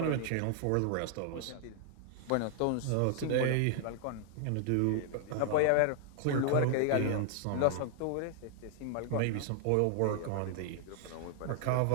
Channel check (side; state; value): both; different; correlation 0.00